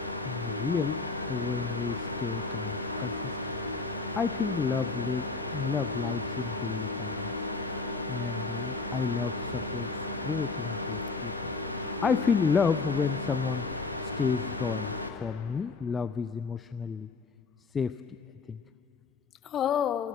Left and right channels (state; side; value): quieter; right; 4.4 dB